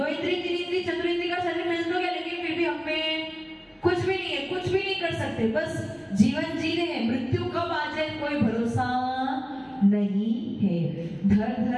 इंद्री 3 इंद्री चतुर्इंद्री का शरीर मिल तो गया, लेकिन फिर भी हम में कुछ भी नहीं है, कुछ भी नहीं कर सकते, बस जीवन जी रहे हैं। मृत्यु कब आ जाए कोई भरोसा नहीं है। धर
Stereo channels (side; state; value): both; identical; correlation 1.00